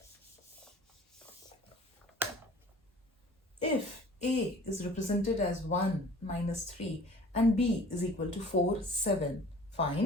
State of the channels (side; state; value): both; normal; correlation 0.47